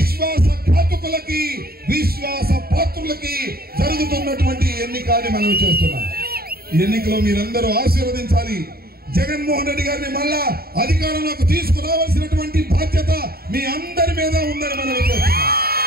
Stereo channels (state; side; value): late; left; 0.44 ms